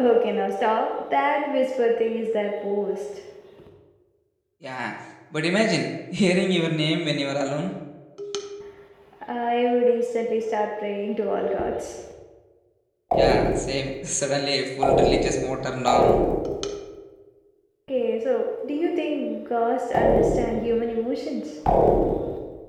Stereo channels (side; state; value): both; identical; correlation 1.00